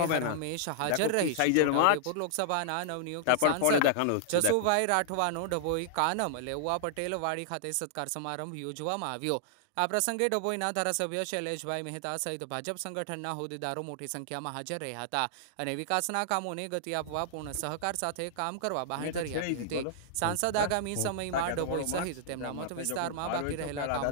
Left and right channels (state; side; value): different; both; correlation -0.01